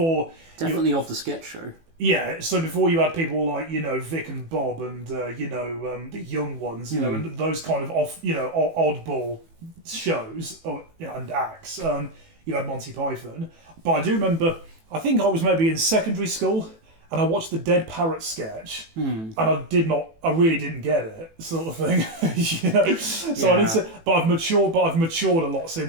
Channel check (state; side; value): late; left; 18 ms